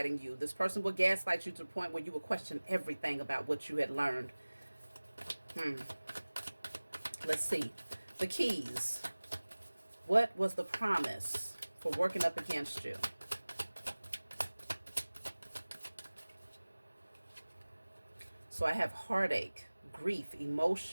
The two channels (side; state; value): both; inverted; correlation -1.00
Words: you. This person would gaslight you to the point where you would question everything about what you had learned. Let's see. The keys. What was the promise for working up against you? So I have heartache, grief,